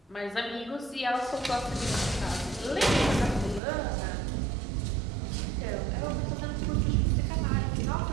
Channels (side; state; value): left; drops out; at 3.6 s